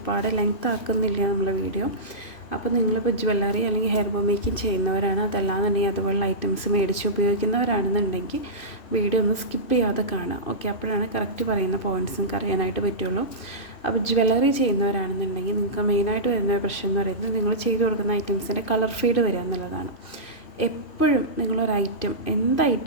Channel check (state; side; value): late; right; 2.6 ms